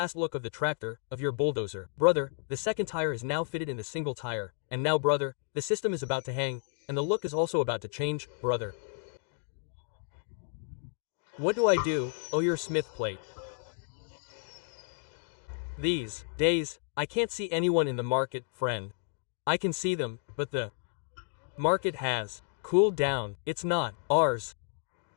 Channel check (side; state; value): right; silent; digital silence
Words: look of the tractor, of your bulldozer. Brother, the second tire is now fitted in the single tire. And now, brother, the system is about to hang, and the look is also about to change, brother. What do I do? Oh, your smith plate. These days, I can't see anyone in the market, friend. I can see them, but the market has cooled down. It's not ours.